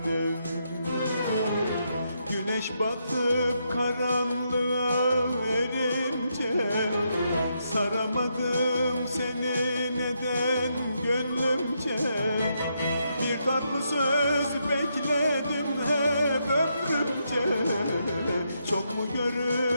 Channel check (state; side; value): inverted; both; correlation -0.80